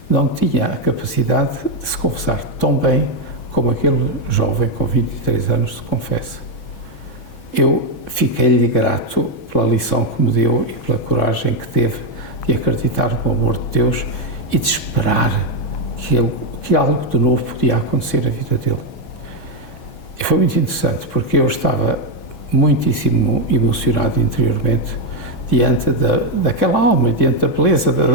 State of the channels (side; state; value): right; late; 6.2 ms